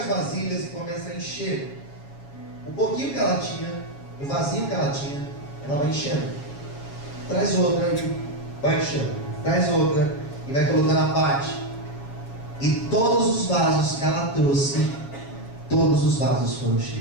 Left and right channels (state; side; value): late; right; 7.3 ms